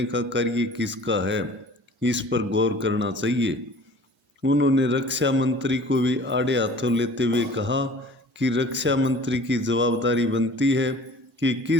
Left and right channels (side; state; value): both; normal; correlation 0.46